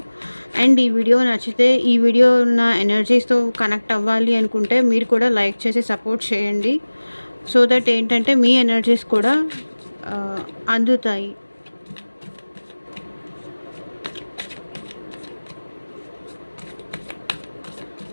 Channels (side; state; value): both; inverted; correlation -1.00